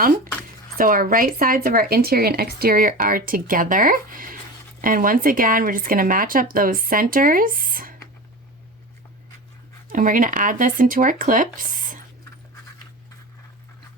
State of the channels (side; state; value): both; normal; correlation 0.29